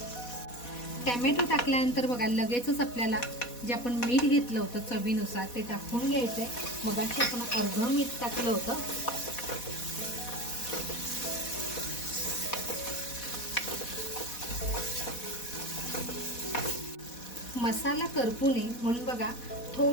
टॅमॅटो टाकल्यानंतर बघा लगेचच आपल्याला जे आपण मीठ घेतलं होतं चवीनुसार ते टाकून घ्यायचंय. मगाशी आपण अर्धं मीठ टाकलं होतं. मसाला करपू नये म्हणून बघा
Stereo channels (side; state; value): right; late; 4.1 ms